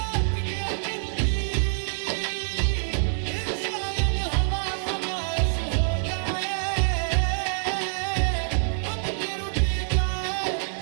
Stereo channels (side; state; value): left; silent; digital silence